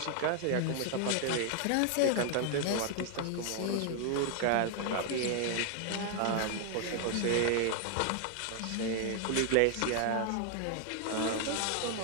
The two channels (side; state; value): both; different; correlation 0.00